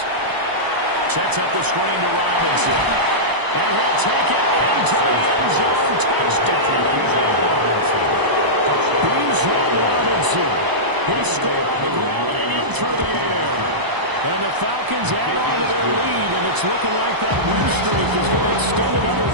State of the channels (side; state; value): left; late; 1.0 ms